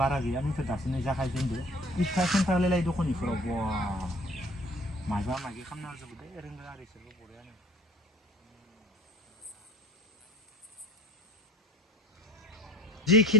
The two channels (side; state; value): both; normal; correlation 0.49